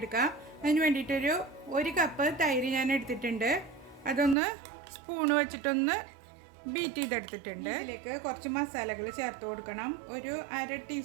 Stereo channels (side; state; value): left; drops out; at 4.4 s